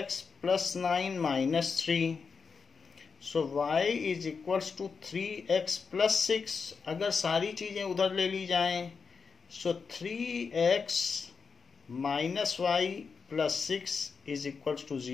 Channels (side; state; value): right; quieter; 5.4 dB